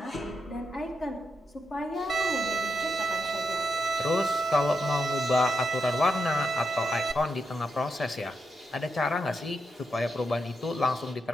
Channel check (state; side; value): normal; both; correlation 0.84